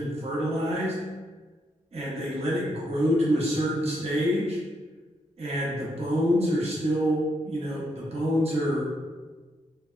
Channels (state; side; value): normal; both; correlation 0.78